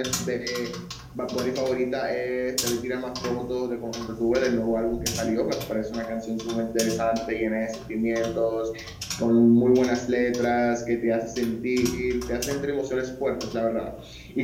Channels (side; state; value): both; identical; correlation 1.00